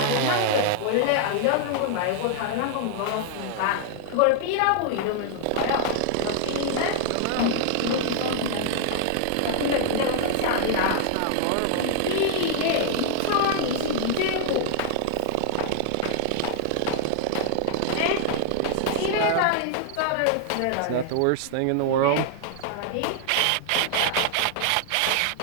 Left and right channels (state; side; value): different; both; correlation -0.01